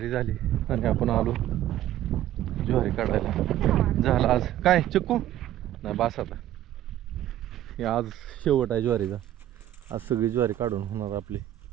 झाली आणि आपण आलो ज्वारी काढायला. झालं आज काय चिक्कू नाही बास. आता हे आज शेवट आहे ज्वारीचा. आज सगळी ज्वारी काढून होणार आपली,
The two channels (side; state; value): left; quieter; 12.8 dB